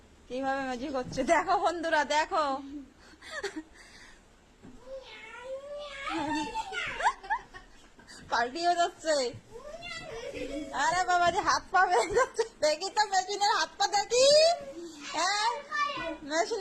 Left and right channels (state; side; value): identical; both; correlation 1.00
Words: কিভাবে ম্যাজিক হচ্ছে, দেখো বন্ধুরা দেখো। পাল্টিয়ে যাচ্ছে। আরে বাবা যে হাত পা বেড়ে যাচ্ছে, দেখি তো মেশিনের হাত পা দেখি। হ্যাঁ